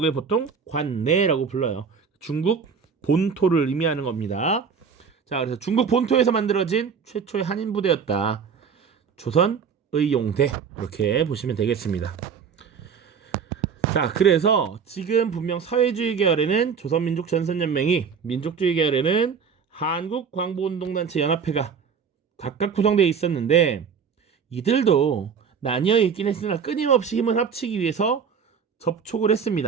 보통 관내라고 불러요. 중국 본토를 의미하는 겁니다. 자, 그래서 중국 본토에서 만들어진 최초의 한인 부대였다. 조선의용대 이렇게 보시면 되겠습니다. 자, 그래서 지금 분명 사회주의 계열에는 조선민족전선연맹이, 민족주의 계열에는 한국광복운동단체 연합회가 각각 구성되어 있었는데 이들도 나뉘어 있긴 했으나 끊임없이 힘을 합치기 위해서 접촉을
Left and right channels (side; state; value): left; quieter; 6.4 dB